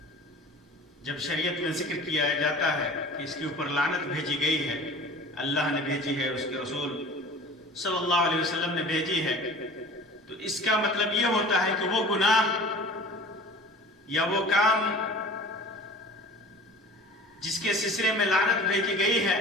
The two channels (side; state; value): both; normal; correlation 0.41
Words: جب شریعت میں ذکر کیا جاتا ہے کہ اس کے اوپر لعنت بھیجی گئی ہے، اللہ نے بھیجی ہے، اس کے رسول صلی اللہ علیہ وسلم نے بھیجی ہے، تو اس کا مطلب یہ ہوتا ہے کہ وہ گناہ یا وہ کام جس کے سلسلے میں لعنت بھیجی گئی ہے